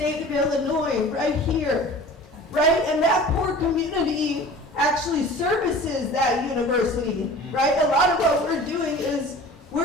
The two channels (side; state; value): both; normal; correlation 0.42